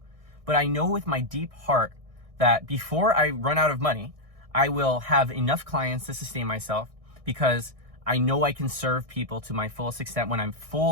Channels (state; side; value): late; left; 1.6 ms